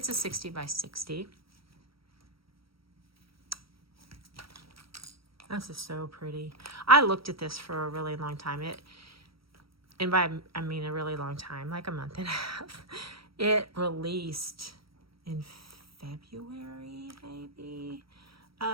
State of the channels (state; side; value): late; left; 0.75 ms